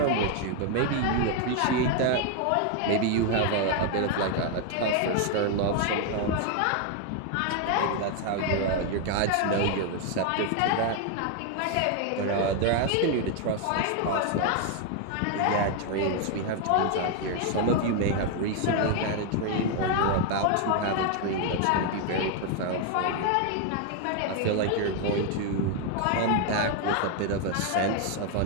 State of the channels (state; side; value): different; both; correlation 0.01